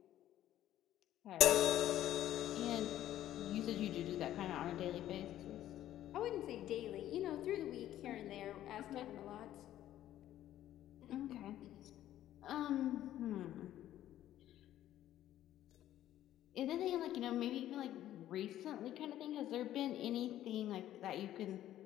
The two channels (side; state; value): right; quieter; 12.7 dB